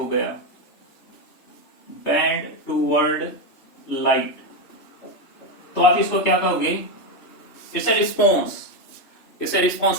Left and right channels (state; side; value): late; right; 3.3 ms